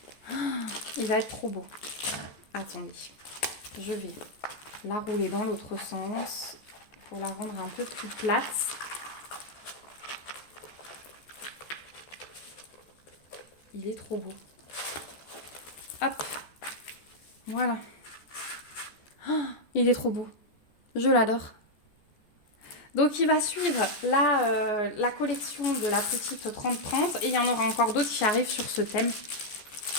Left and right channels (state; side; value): late; right; 14 ms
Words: Il va être trop beau. Attendez, je vais la rouler dans l'autre sens pour la rendre un peu plus plate. Il est trop beau. Hop, voilà. Oh, il est trop beau. Je l'adore. Donc il va suivre la collection de la petite 30-30 et il y en aura encore d'autres qui arrivent sur ce thème.